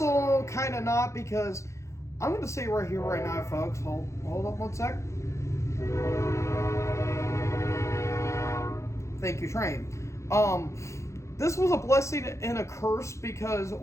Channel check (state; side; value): late; right; 0.14 ms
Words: kind of not, because I'm going to say right here, right now, folks, hold up one sec. Thank you, Train. This was a blessing and a curse, because